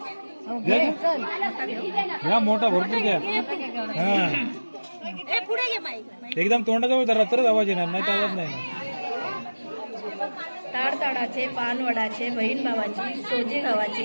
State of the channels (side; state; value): both; inverted; correlation -1.00